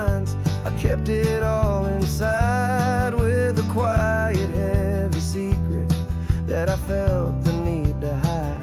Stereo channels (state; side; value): identical; both; correlation 1.00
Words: I kept it all inside with a quiet, heavy secret that I felt the need to